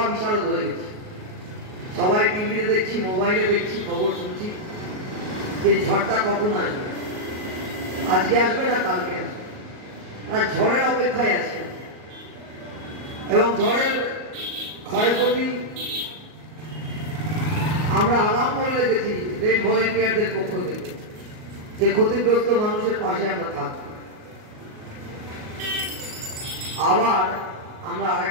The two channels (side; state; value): left; late; 38 ms